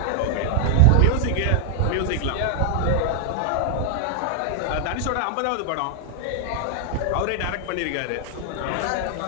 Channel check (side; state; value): both; different; correlation 0.00